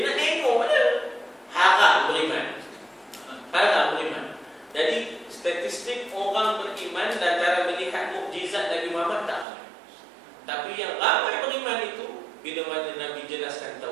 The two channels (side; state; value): left; drops out; at 9.5 s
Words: nak tengok je. Haram beriman. Haram beriman. Jadi statistik orang beriman lantaran melihat mukjizat Nabi Muhammad tak ramai. Tapi yang ramai beriman itu bila mana Nabi jelaskan